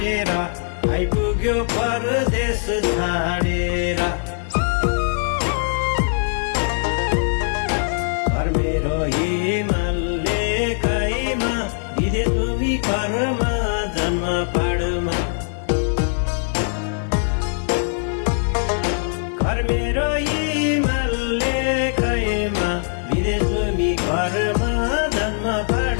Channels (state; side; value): silent; right; 65 dB below the other